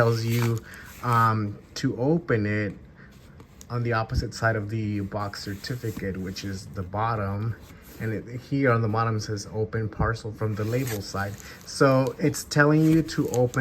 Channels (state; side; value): identical; both; correlation 1.00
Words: you to open it on the opposite side of the box certificate, which is the bottom. And here on the bottom says open parcel from the label side. So it's telling you to